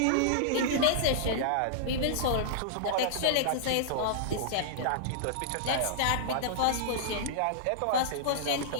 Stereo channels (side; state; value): both; different; correlation -0.02